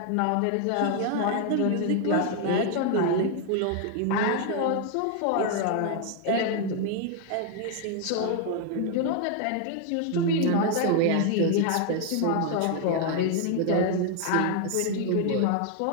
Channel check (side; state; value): both; different; correlation 0.00